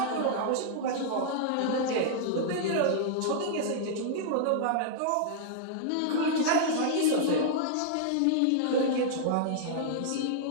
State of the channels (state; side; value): different; both; correlation -0.01